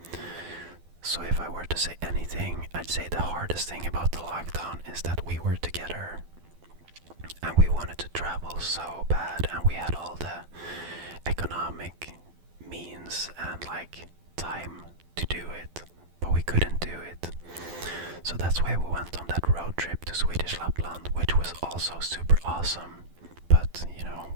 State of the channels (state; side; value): late; left; 12 ms